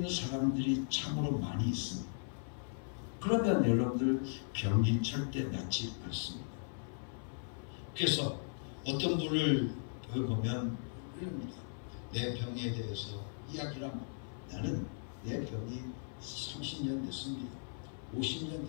사람들이 참으로 많이 있습니다. 그러면 여러분들 병이 절대 낫지 않습니다. 그래서 어떤 분을 보면 이럽니다. 내 병에 대해서 이야기를 하면 나는 내 병이 30년 됐습니다. 50년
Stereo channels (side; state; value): right; silent; 53 dB below the other